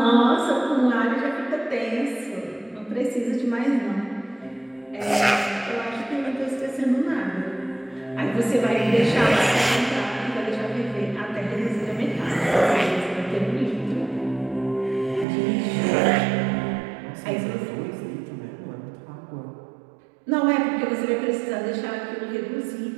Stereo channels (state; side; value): drops out; left; at 15.2 s